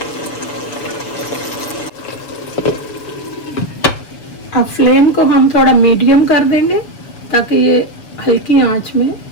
अब फ्लेम को हम थोड़ा मीडियम कर देंगे ताकि ये हल्की आंच में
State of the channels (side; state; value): right; late; 7.0 ms